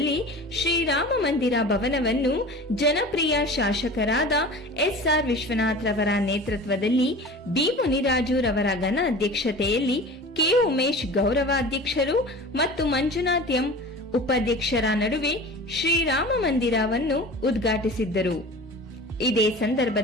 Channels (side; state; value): both; normal; correlation 0.37